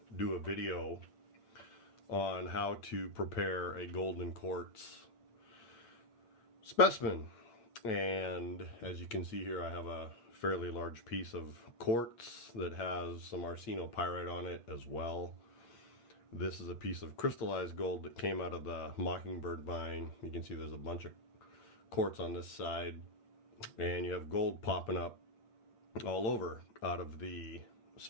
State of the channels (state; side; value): late; right; 8.6 ms